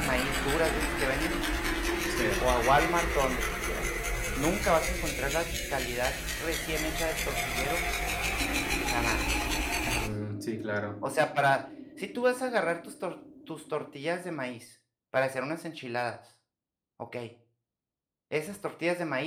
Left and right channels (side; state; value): both; identical; correlation 1.00